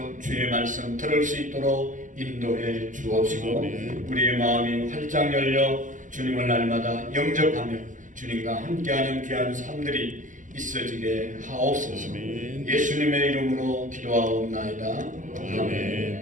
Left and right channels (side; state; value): left; late; 0.37 ms